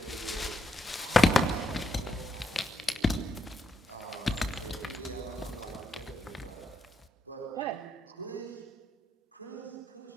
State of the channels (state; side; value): normal; both; correlation 0.80